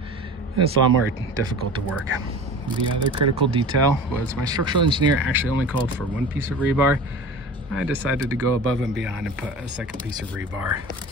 it's a lot more difficult to work. The other critical detail was my structural engineer actually only called for 1 piece of rebar. I decided to go above and beyond and put a second piece of rebar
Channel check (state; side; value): normal; both; correlation 0.37